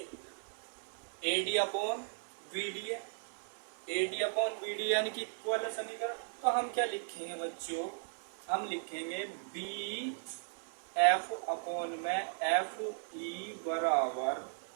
A D upon B D है, A D upon B D यानी कि इक्वल है समीकरण। तो हम क्या लिखेंगे बच्चों, हम लिखेंगे बी एफ अपॉन में एफ ई बराबर,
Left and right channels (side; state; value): left; silent; 53 dB below the other